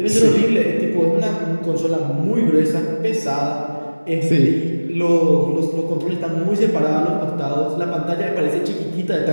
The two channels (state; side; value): inverted; both; correlation -1.00